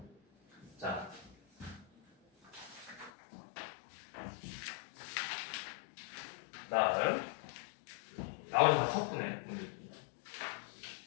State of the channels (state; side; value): drops out; right; at 3.1 s